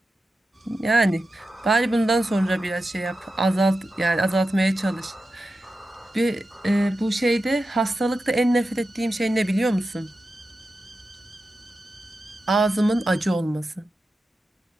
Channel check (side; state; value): both; normal; correlation 0.91